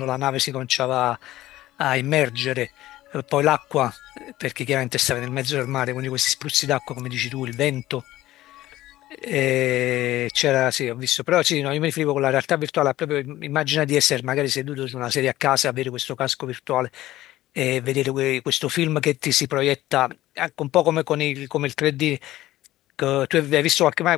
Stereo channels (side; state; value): right; quieter; 15.5 dB